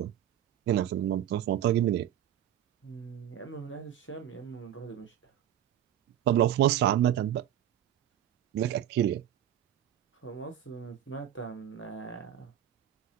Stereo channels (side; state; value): left; quieter; 10.9 dB